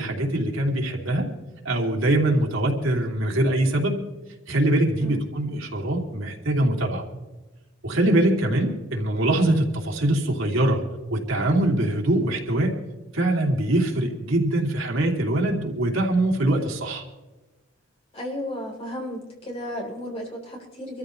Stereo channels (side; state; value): both; normal; correlation 0.62